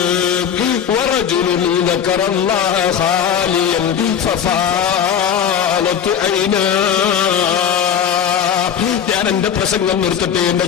വറജുലുൻ ദക്കറല്ലാഹ ഖാലിയൻ ഫഫാലത് ഐനാ. ഞാൻ എന്റെ പ്രസംഗം നിർത്തട്ടെ. എന്റെ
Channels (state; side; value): quieter; right; 8.4 dB